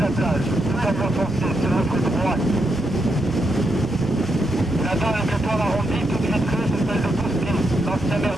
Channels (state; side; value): normal; both; correlation 0.82